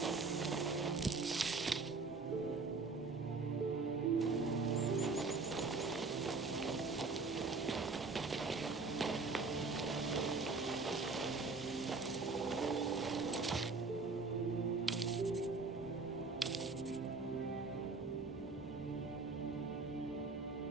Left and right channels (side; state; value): left; quieter; 4.1 dB